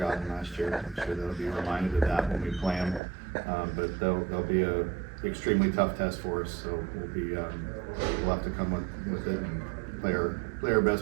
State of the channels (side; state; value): left; drops out; at 3.0 s